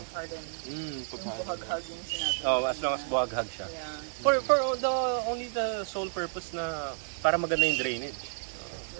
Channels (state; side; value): silent; left; digital silence